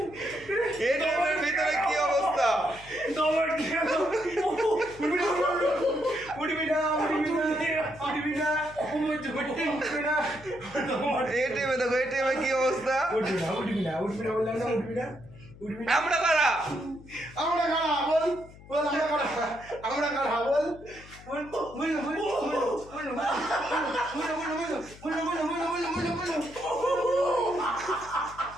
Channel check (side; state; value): left; noise; hum, 20 dB below the sound